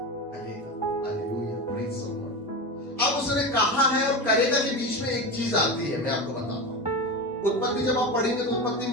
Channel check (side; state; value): both; normal; correlation 0.22